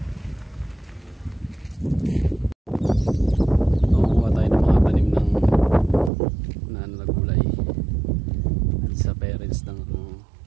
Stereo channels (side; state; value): left; drops out; at 6.1 s